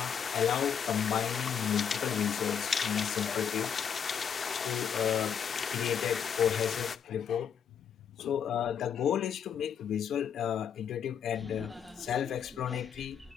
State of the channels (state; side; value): quieter; right; 7.8 dB